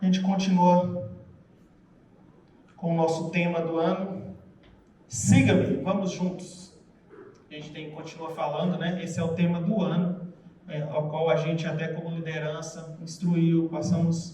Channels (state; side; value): identical; both; correlation 1.00